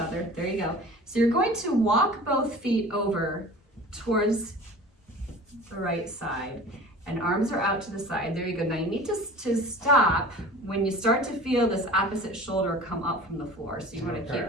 There you go. So you're going to walk both feet over towards the right side, and arms are out to the side. There you go. Now you need to stop when you start to feel this opposite shoulder come up from the floor. So you want to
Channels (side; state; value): both; normal; correlation 0.40